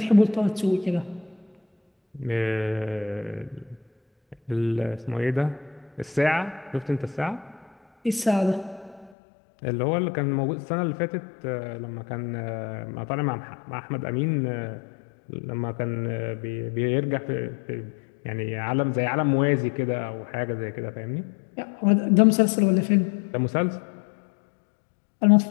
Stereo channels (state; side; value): drops out; right; at 9.1 s